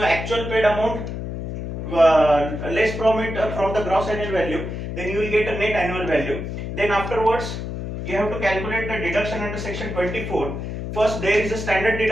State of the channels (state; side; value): noise; left; hum, 6 dB below the sound